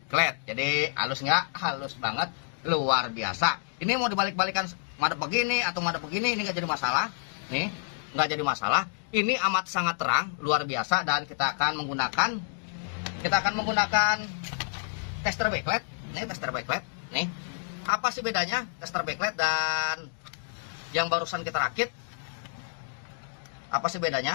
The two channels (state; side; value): silent; right; digital silence